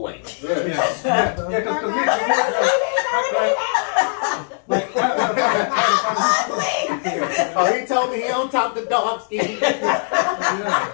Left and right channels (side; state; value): right; silent; digital silence